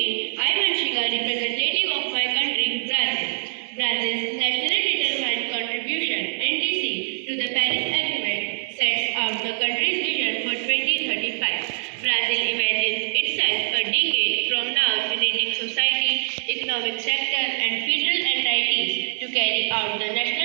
I am Vanchika, representative of my country, Brazil. Brazil's nationally determined contribution, NDC, to the Paris Agreement sets out the country's vision for 2035. Brazil imagines itself a decade from now uniting society, economic sector, and federal entities to carry out the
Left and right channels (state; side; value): silent; left; digital silence